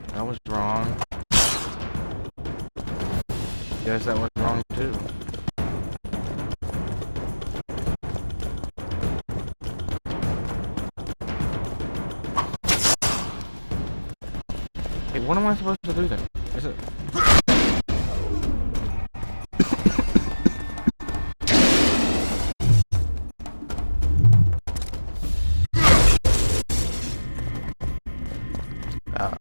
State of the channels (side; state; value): both; inverted; correlation -1.00